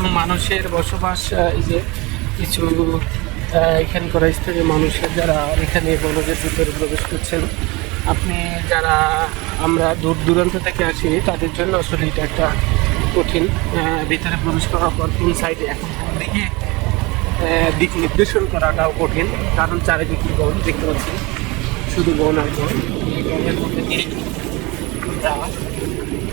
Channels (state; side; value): quieter; left; 24.7 dB